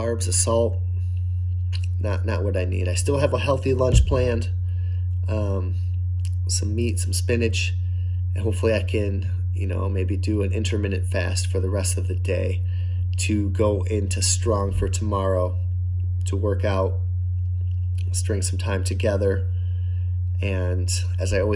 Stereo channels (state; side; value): identical; both; correlation 1.00